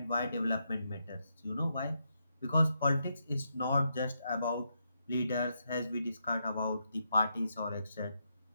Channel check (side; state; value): both; inverted; correlation -0.81